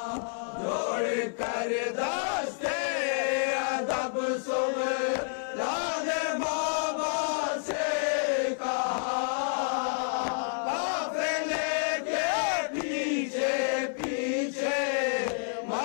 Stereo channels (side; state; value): right; silent; 56 dB below the other